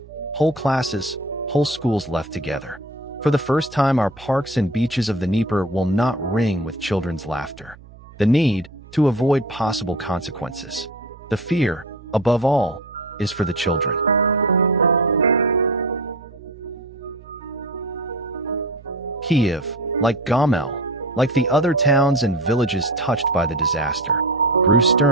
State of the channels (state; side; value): noise; right; hum, 21 dB below the sound